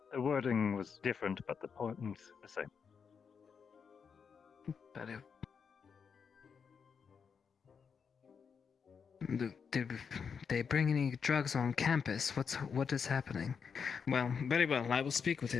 The wording was different, but the point the same. But did they bring any drugs on campus? What is happening? Well, very well. I will speak with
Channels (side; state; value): right; quieter; 6.3 dB